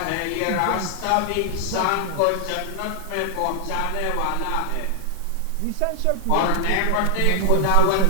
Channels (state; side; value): different; both; correlation 0.00